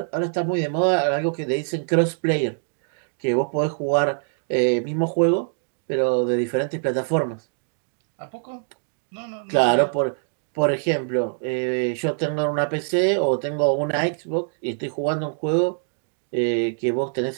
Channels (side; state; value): left; silent; digital silence